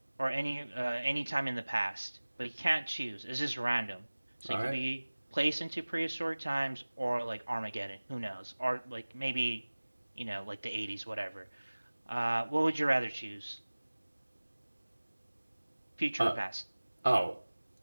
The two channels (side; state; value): both; inverted; correlation -1.00